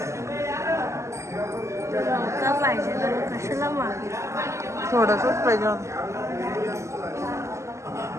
पाहिजे कशाला मागे थोडंसंच पाहिजे होतं.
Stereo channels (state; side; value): late; left; 0.14 ms